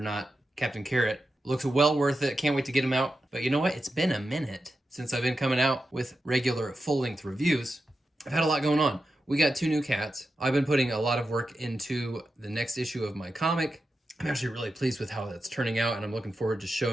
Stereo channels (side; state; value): both; normal; correlation 0.90